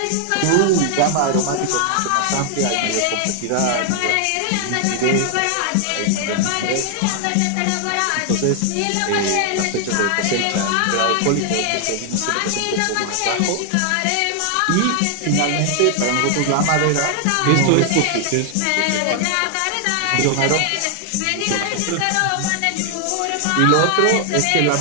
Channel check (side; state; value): both; different; correlation 0.00